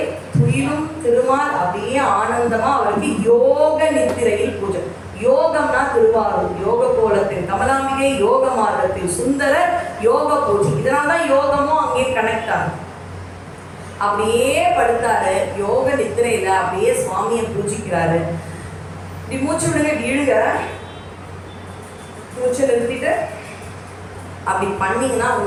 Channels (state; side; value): identical; both; correlation 1.00